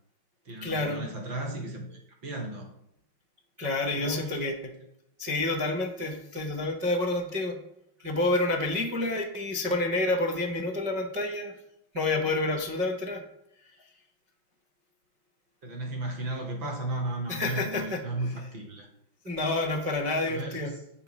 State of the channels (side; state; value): left; late; 5.4 ms